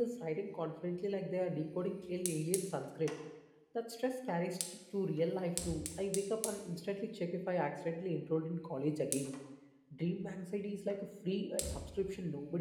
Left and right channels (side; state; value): both; identical; correlation 1.00